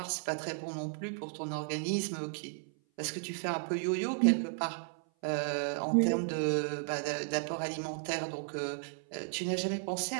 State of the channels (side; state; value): left; silent; 55 dB below the other